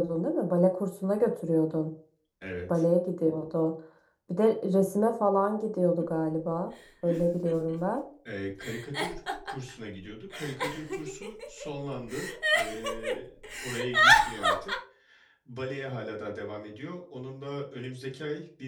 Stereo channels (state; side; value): identical; both; correlation 1.00